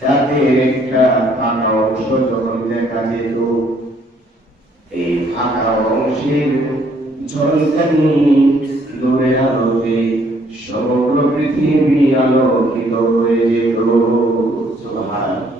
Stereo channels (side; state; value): both; normal; correlation 0.65